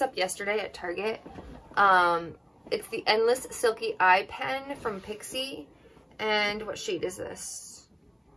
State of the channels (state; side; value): identical; both; correlation 1.00